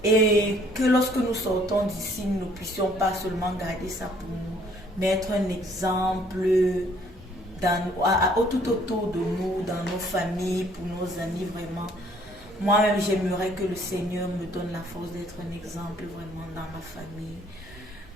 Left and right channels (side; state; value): both; normal; correlation 0.61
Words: et que lorsque nous sortons d'ici, nous ne puissions pas seulement garder ça pour nous, mais être un exemple tout autour de nous, dans nos familles, pour nos amis vraiment. Moi-même, j'aimerais que le Seigneur me donne la force d'être un exemple vraiment dans ma famille,